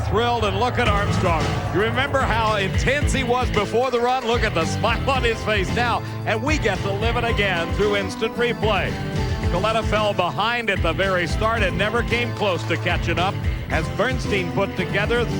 thrilled, and look at Armstrong. You remember how intense he was before the run? Look at the smile on his face now, and we get to live it again through instant replay. Coletta fell behind at the very start and never came close to catching up as Bernstein put together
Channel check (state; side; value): identical; both; correlation 1.00